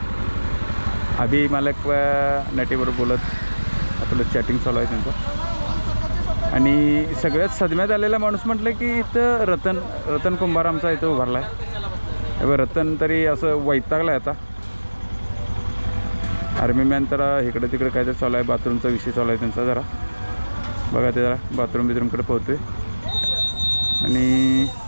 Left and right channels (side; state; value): both; inverted; correlation -1.00